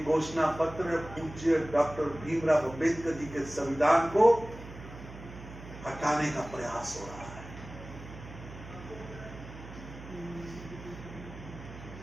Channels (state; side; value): noise; right; hum, 14 dB below the sound